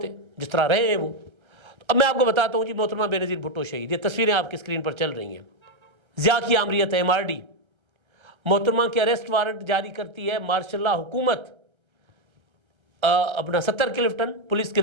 جس طرح رہے ہیں وہ. اب میں آپ کو بتاتا ہوں جی. محترمہ بے نظیر بھٹو شہید، یہ تصویریں آپ کی اسکرین پر چل رہی ہیں. ضیاء کی آمریت ہے، MRD. محترمہ کے اریسٹ وارنٹ جاری کرتی ہے مارشل لا حکومت. اپنا 70 کلفٹن پولیس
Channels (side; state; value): left; late; 1.3 ms